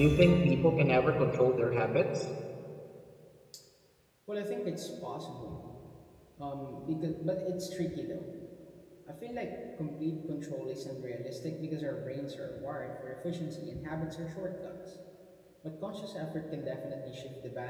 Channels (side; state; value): both; identical; correlation 1.00